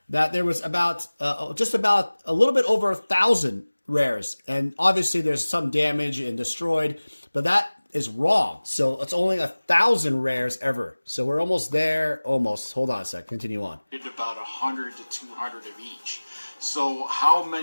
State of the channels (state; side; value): inverted; both; correlation -1.00